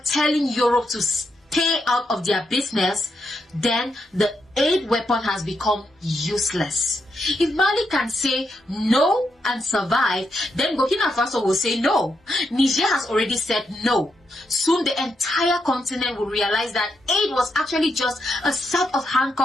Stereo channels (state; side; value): normal; both; correlation 0.82